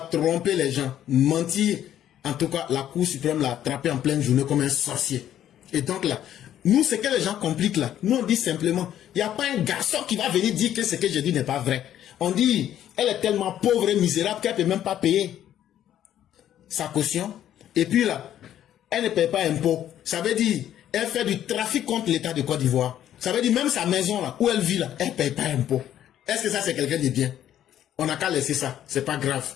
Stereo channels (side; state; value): right; quieter; 11.2 dB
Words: tromper les gens, mentir, en tout cas, la Cour suprême l'a attrapé en pleine journée comme un sorcier. Et donc là, nous, ce que les gens compliquent là, nous on dit simplement, il n'y a pas un garçon qui va venir dire que ce que je dis n'est pas vrai. On dit, elle est tellement pauvre et misérable qu'elle ne peut même pas payer sa caution. Et puis là, elle ne paye pas impôt. Ça veut dire, elle fait du trafic contre l'État de Côte d'Ivoire. Ça veut dire même sa maison là, où elle vit là, elle ne paye pas impôt. Est-ce que ça c'est quelqu'un de bien? On n'a qu'à laisser ça, c'est pas grave.